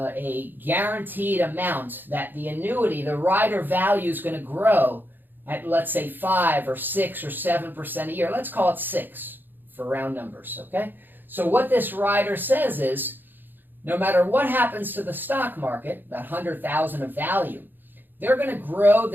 guaranteed amount that the annuity, the rider value, is going to grow at, let's say, 5 or 6 or 7% a year. Let's call it 6 for round numbers, okay? So what this rider says is, no matter what happens to the stock market, that 100,000 of value, they're going to grow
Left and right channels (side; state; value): left; late; 0.093 ms